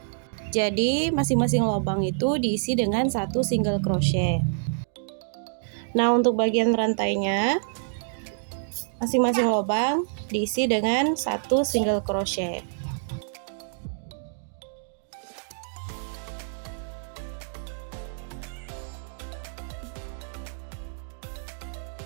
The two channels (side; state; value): left; silent; digital silence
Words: Jadi, masing-masing lubang itu diisi dengan satu single crochet. Nah, untuk bagian rantainya, masing-masing lubang diisi dengan satu single crochet.